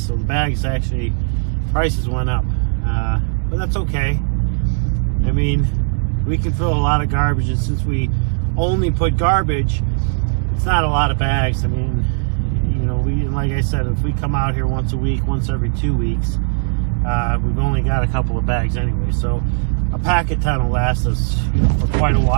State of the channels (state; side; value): silent; left; 63 dB below the other